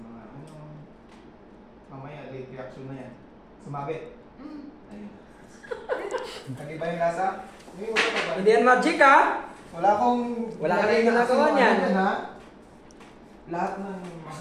mamaya, late reaction na yan. Sumabit. Ayun. Nag-iba yung lasa? Hindi yan magic ha? Wala akong... Wala ka rin ginagawa niyan. Lahat ng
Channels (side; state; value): both; identical; correlation 1.00